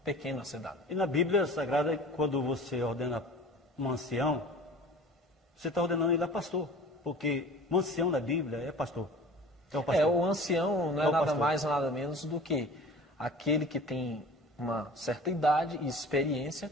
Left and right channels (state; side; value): normal; both; correlation 0.42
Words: pequeno a ser dado. E na Bíblia Sagrada, quando você ordena um ancião, você está ordenando ele a pastor, porque um ancião na Bíblia é pastor. É o pastor. O ancião não é nada mais, nada menos do que aquele que tem uma certa idade e experiência